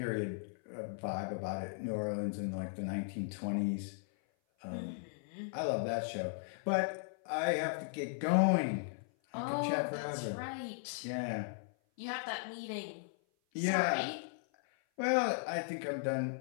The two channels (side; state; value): right; silent; 53 dB below the other